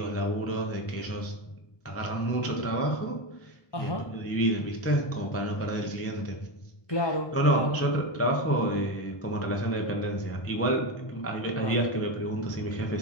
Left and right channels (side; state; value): right; late; 1.2 ms